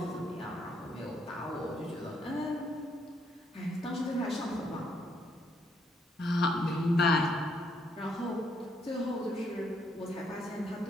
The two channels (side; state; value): both; normal; correlation 0.73